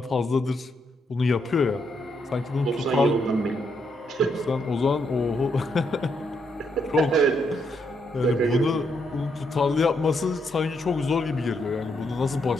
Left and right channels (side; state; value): both; normal; correlation 0.77